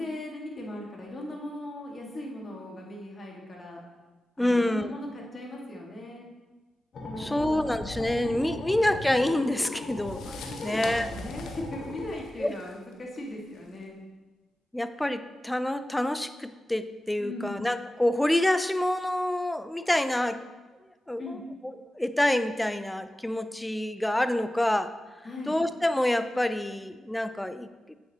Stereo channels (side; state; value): both; normal; correlation 0.95